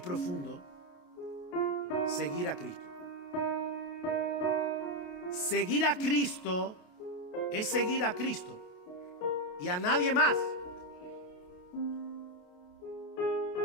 profundo, seguir a Cristo. Seguir a Cristo es seguir a Cristo y a nadie más.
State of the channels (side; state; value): right; late; 28 ms